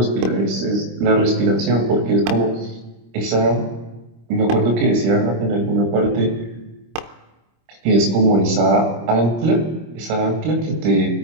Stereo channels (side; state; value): left; late; 26 ms